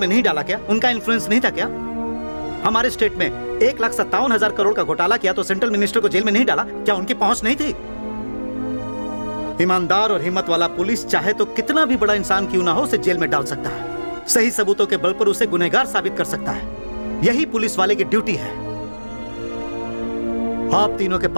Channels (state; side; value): inverted; both; correlation -1.00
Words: नहीं डाला क्या? उनका इन्फ्लुएंस नहीं था क्या? हमारे स्टेट में 1,57,000 करोड़ का घोटाला किया तो सेंट्रल मिनिस्टर को जेल में नहीं डाला क्या? उनकी पहुंच नहीं थी? ईमानदार और हिम्मत वाला पुलिस चाहे तो कितना भी बड़ा इंसान क्यों ना हो उसे जेल में डाल सकता है, सही सबूतों के बल पर उसे गुनहगार साबित कर सकता है। यही पुलिस वाले की ड्यूटी है। आप तीनों के